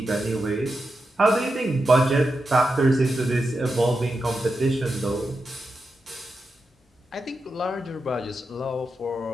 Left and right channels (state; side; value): normal; both; correlation 0.88